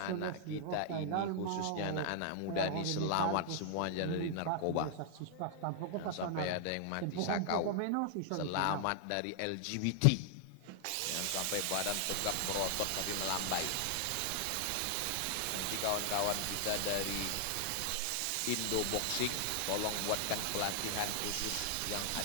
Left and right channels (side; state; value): both; different; correlation 0.00